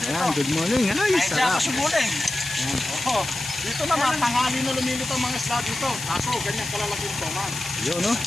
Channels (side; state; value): left; noise; hiss, 8 dB below the sound